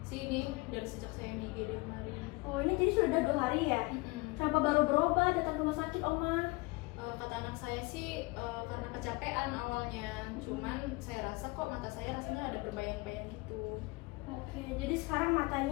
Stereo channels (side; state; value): right; quieter; 24.9 dB